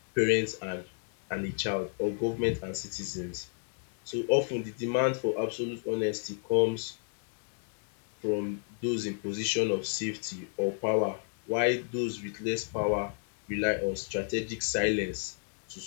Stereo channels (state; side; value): silent; right; 56 dB below the other